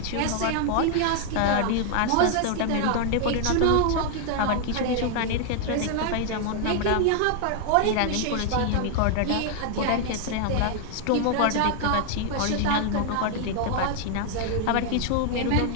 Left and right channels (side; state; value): both; different; correlation 0.00